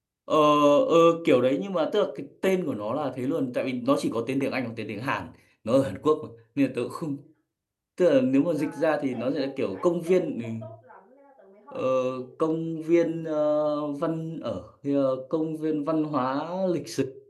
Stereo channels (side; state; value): both; identical; correlation 1.00